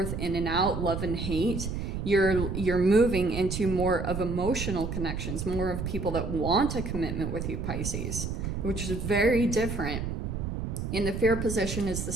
in and out, love and hate. You're moving into more of emotional connections, more of people that want a commitment with you, Pisces, which is very different. In the fear position is the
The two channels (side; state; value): right; noise; rumble, 4 dB below the sound